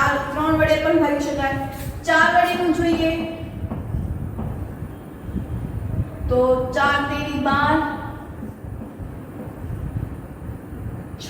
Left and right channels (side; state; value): both; identical; correlation 1.00